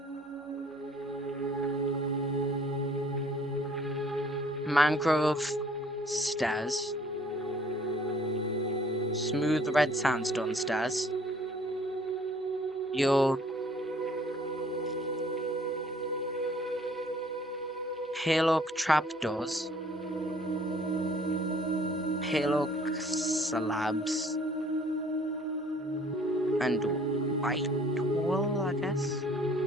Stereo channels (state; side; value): normal; both; correlation 0.57